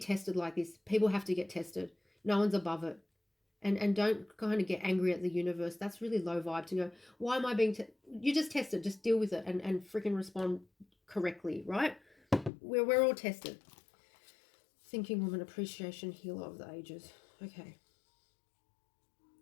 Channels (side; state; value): right; drops out; at 12.5 s